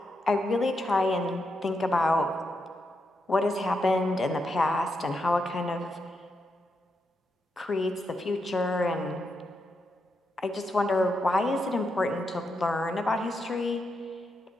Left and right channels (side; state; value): both; normal; correlation 0.84